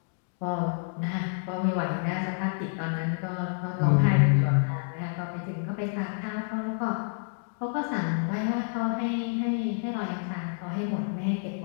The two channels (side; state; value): right; silent; digital silence